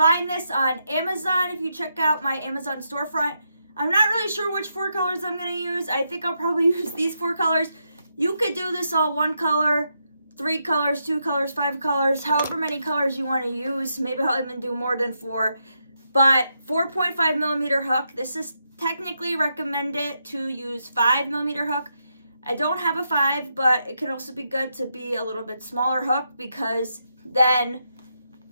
this on Amazon if you check out my Amazon storefront. I'm not really sure which 4 colors I'm going to use. I think I'll probably use these 4 colors. You could do this all 1 color, 3 colors, 2 colors, 5 colors, however many colors you want to use. Maybe I'll even do more than 4. But 4.5 millimeter hook. This is technically recommended to use 5 millimeter hook. I don't have a 5, but it can also be good to be a little bit smaller hook because then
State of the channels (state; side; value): inverted; both; correlation -0.82